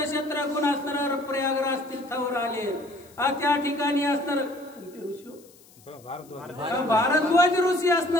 शत्रुघ्न असणार प्रयागराज तीर्थावर आले। त्या ठिकाणी असणार भारद्वाज ऋषी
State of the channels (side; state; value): left; noise; hiss, 26 dB below the sound